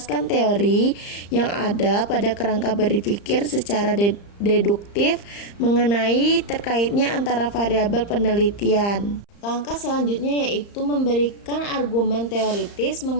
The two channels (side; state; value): right; late; 35 ms